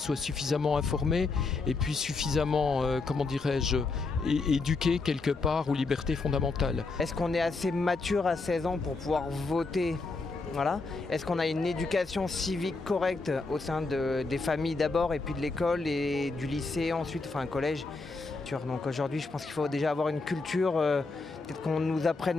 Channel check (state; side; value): quieter; right; 3.8 dB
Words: suffisamment informées et puis suffisamment, éduquées quelque part aux libertés fondamentales. Est-ce qu'on est assez mature à 16 ans pour pouvoir voter? Voilà. Est-ce qu'on a une éducation civique correcte au sein des familles d'abord et puis de l'école et du lycée ensuite, un collège? Donc aujourd'hui, je pense qu'il faut déjà avoir une culture, peut-être qu'on nous apprenne